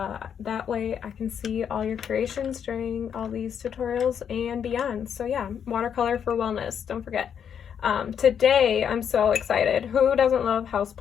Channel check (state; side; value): quieter; right; 8.0 dB